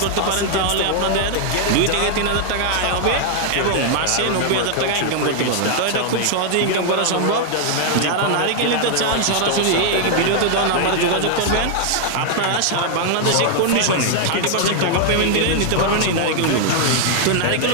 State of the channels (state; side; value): different; both; correlation 0.00